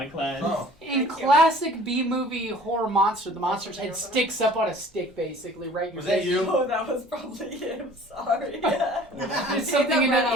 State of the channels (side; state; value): both; normal; correlation 0.49